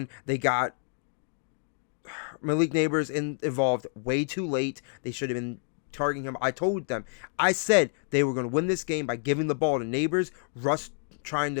They got Malik Neighbors involved way too late. They should have been targeting him. I told them, I said they were going to win this game by giving the ball to Neighbors, Russ trying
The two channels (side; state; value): right; silent; 59 dB below the other